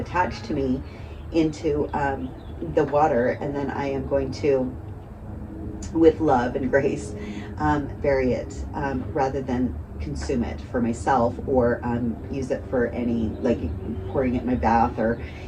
to me into the water, and then I am going to, with love and grace, vary it rather than consume it for myself, or use it for any, like pouring it in my bath, or,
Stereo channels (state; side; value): identical; both; correlation 1.00